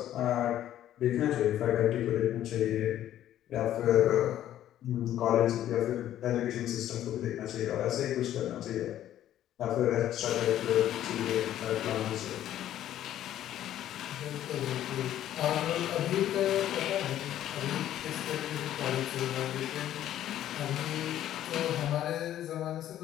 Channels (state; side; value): quieter; right; 12.1 dB